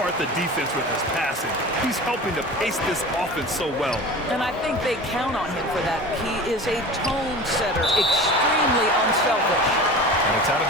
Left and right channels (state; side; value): normal; both; correlation 0.36